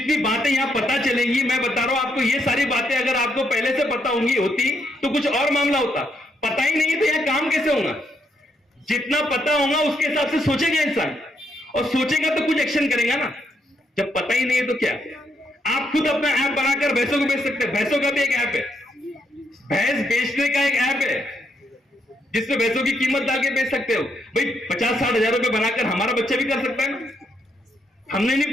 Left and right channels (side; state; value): both; normal; correlation 0.76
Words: बातें यहां पता चलेंगी, मैं बता रहा हूं आपको, ये सारी बातें अगर आपको पहले से पता होती तो कुछ और मामला होता। पता ही नहीं है तो यहां काम कैसे होगा? जितना पता होगा उसके हिसाब से सोचेगा इंसान, और सोचेगा तो कुछ एक्शन करेगा ना। जब पता ही नहीं है तो क्या? आप खुद अपना ऐप बनाकर भैंसों को बेच सकते हैं। भैंसों का भी एक ऐप है, भैंस बेचने का एक ऐप है, जिसमें भैंसों की कीमत डाल के बेच सकते हो। भाई 50-60 हजार रुपए बनाकर हमारा बच्चा भी कर सकता है ना। हमने नहीं